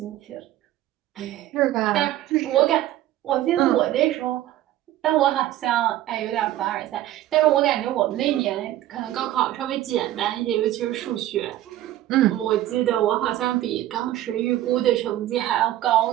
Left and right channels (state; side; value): quieter; left; 13.9 dB